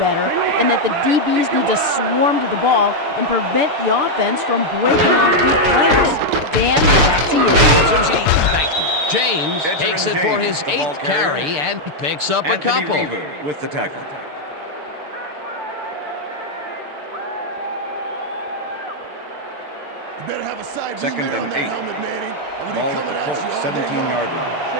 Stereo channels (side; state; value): left; late; 6.8 ms